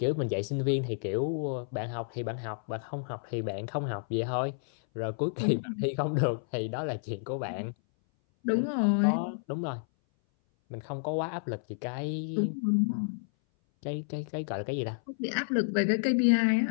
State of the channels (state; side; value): silent; right; 57 dB below the other